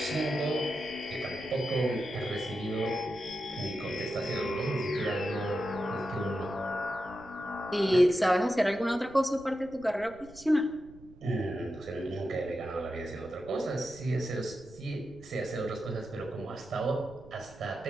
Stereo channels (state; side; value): noise; right; rumble, 21 dB below the sound